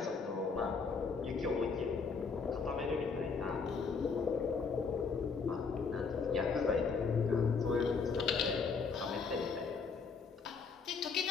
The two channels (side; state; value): right; quieter; 5.1 dB